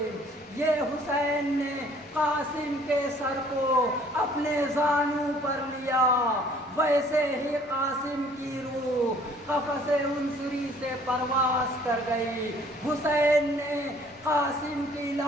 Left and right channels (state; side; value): normal; both; correlation 0.57